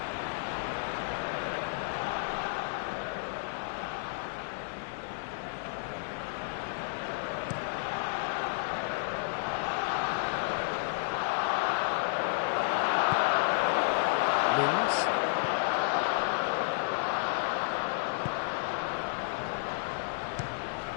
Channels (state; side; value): silent; right; digital silence